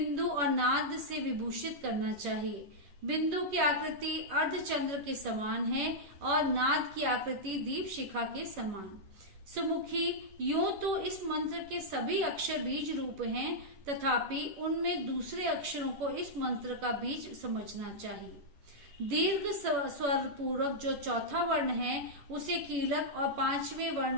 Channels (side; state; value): left; late; 11 ms